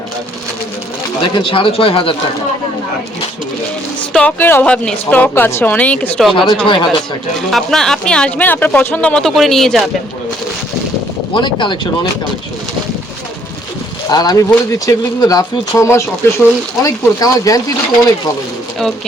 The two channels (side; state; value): both; normal; correlation 0.65